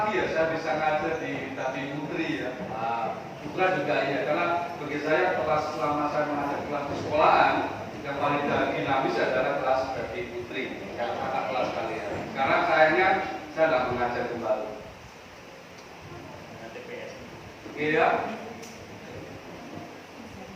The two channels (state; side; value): identical; both; correlation 1.00